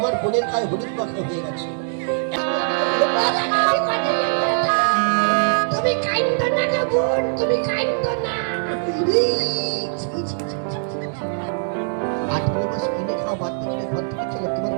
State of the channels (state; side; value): silent; left; digital silence